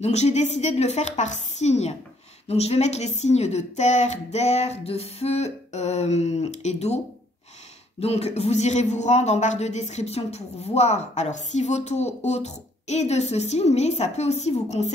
j'ai décidé de le faire par signe. Donc, je vais mettre les signes de terre, d'air, de feu et d'eau. Donc, vous irez vous rendre en barre de description pour voir, alors, si votre autre est de ce signe, mais ça peut aussi vous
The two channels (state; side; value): normal; both; correlation 0.65